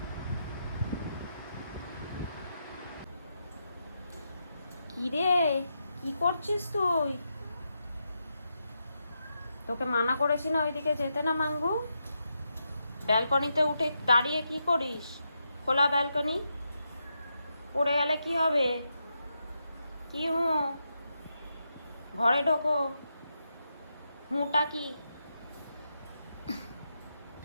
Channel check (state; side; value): inverted; both; correlation -0.85